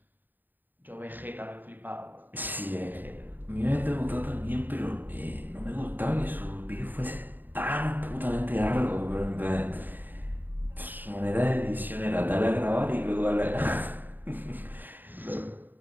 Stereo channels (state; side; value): late; left; 0.090 ms